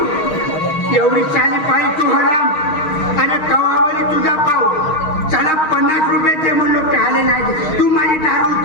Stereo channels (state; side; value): late; right; 6.4 ms